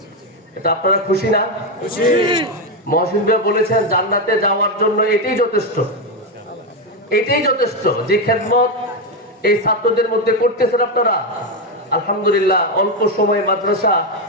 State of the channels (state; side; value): normal; both; correlation 0.07